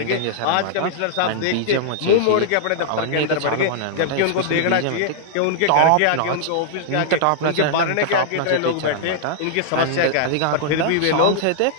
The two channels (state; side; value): different; both; correlation -0.01